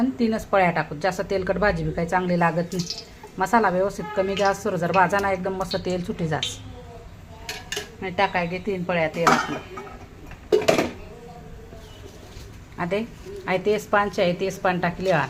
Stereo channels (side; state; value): both; identical; correlation 1.00